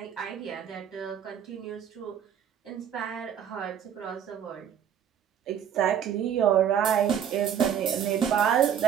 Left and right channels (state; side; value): quieter; left; 9.0 dB